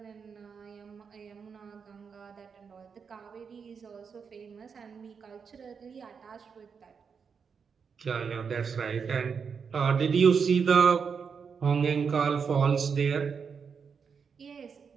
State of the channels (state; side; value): quieter; left; 6.1 dB